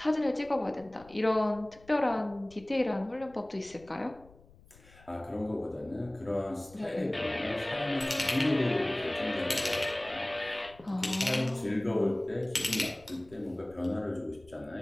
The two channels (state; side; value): noise; left; rumble, 24 dB below the sound